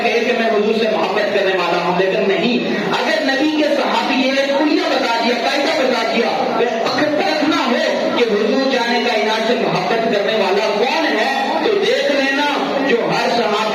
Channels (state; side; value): identical; both; correlation 1.00